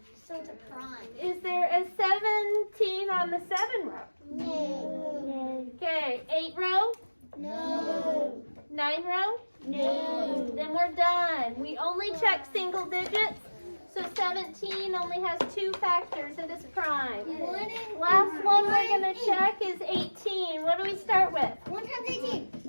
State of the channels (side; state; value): both; inverted; correlation -1.00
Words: So it's a prime. Is there a 17 on the 7 row? No. Okay. 8 row? No. 9 row? No. Then we're done. We only check single digits. So 17 only has 2 factors and it's prime. Last one we're going to check is 18. What do we start with? 1 times 18.